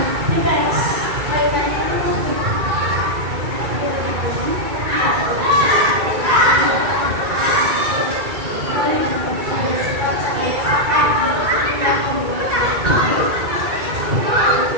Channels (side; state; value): left; late; 2.3 ms